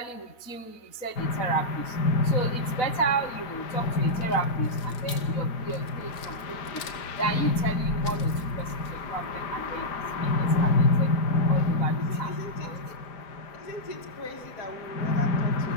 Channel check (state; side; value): late; right; 4.1 ms